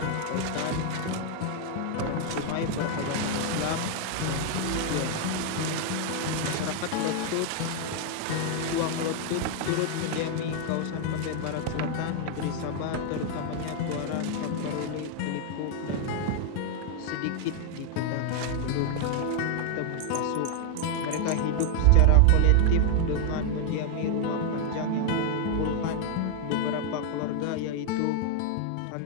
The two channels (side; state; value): both; different; correlation 0.00